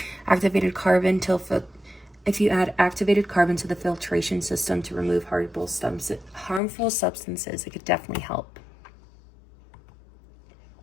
Activated carbon if you add activated carbon to the filtration system to remove harmful substances, it could definitely help.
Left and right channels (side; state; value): right; drops out; at 6.6 s